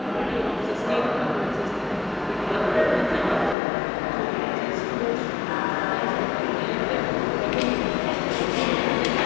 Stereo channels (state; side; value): drops out; right; at 3.6 s